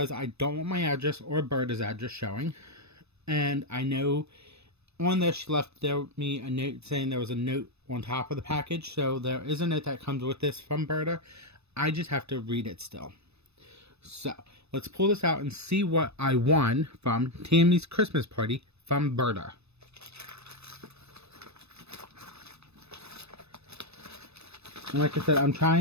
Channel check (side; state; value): left; late; 0.79 ms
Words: I don't want my address or Berta's address showing. And I know on there she left me a note saying there was a note on top of the package. So there is a note that comes with this from Berta. I just have to read it still. So let's pull this out and see what I won from Tammy's Christmas party from Berta. And like I said, I'm